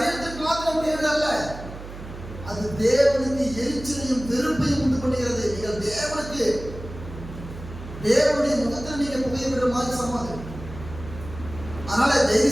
மாத்திரம் கேடு அல்ல, அது தேவனுக்கு எரிச்சலையும் வெறுப்பையும் உண்டு பண்ணுகிறது. நீங்கள் தேவனுடைய முகத்தில் நீங்க புகையிடுற மாதிரி சமாதி. அதனால தயவு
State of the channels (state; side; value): noise; right; hum, 12 dB below the sound